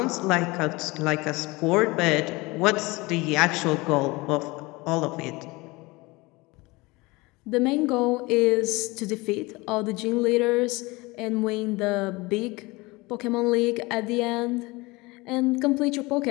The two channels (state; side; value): quieter; right; 23.3 dB